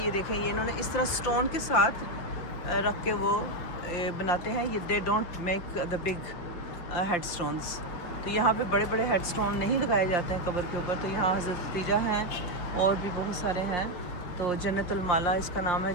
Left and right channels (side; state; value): right; late; 5.7 ms